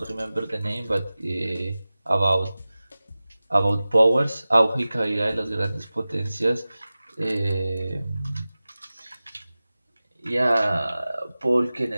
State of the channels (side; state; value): both; inverted; correlation -0.97